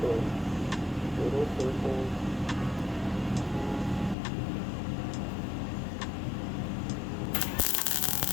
those little circles.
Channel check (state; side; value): drops out; right; at 4.2 s